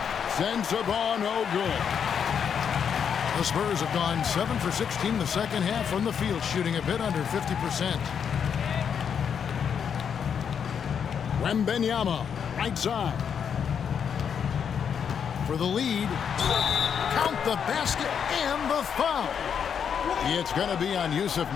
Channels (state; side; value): quieter; right; 7.5 dB